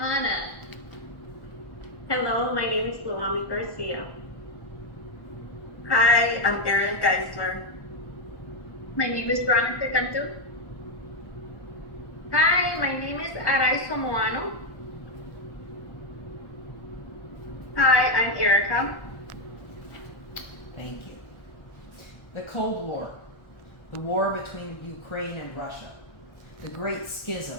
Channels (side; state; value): right; late; 1.1 ms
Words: Hello, my name is Luami Garcia. Hi, I'm Erin Geisler. My name is Veronica Cantu. Hi, my name is Araizo Moano. Hi, I'm Erica. Thank you. The Cold War, the war between Ukraine and Russia, the Great